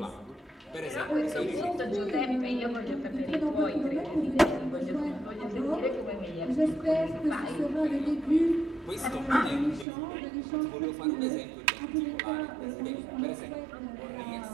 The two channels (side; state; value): left; drops out; at 9.9 s